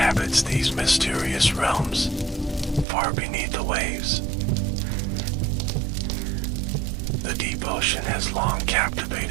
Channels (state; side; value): drops out; left; at 2.9 s